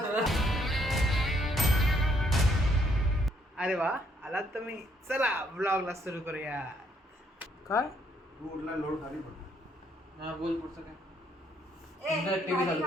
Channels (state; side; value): normal; both; correlation 0.70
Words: अरे वा आलात तुम्ही, चला ब्लॉगला सुरू करूया. काय लोड खाली पडला. बोल पुढचं काय.